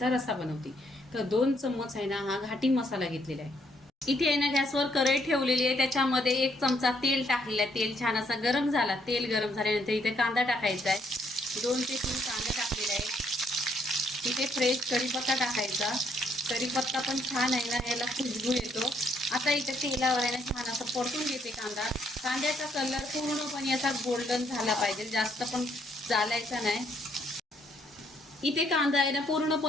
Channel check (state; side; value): normal; both; correlation 0.71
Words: रस्सा बनवते. तर 2 चम्मच आहे ना, हा घाटी मसाला घेतलेला आहे. इथे आहे ना, गॅसवर कढई ठेवलेली आहे. त्याच्यामध्ये 1 चमचा तेल टाकलेलं आहे. तेल छान असा गरम झाला. तेल गरम झाल्यानंतर इथे कांदा टाकायचा आहे. 2 ते 3 कांदा टाकलेला आहे. इथे फ्रेश कढीपत्ता टाकायचा. कढीपत्ता पण छान आहे ना, याला खुशबू येतो. आता इथे तेलावर आहे ना, छान असं परतून घेते कांदा. कांद्याचा कलर पूर्णपणे असा गोल्डन झाला पाहिजे, जास्त पण चालायचा नाही. इथे कांदा आहे ना,